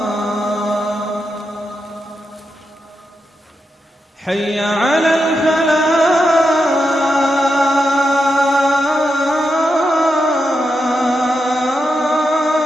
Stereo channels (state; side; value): normal; both; correlation 0.86